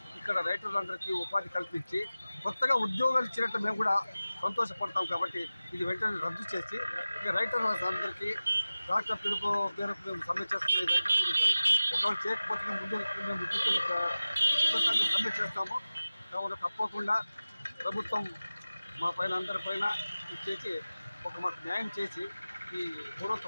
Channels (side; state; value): both; inverted; correlation -0.97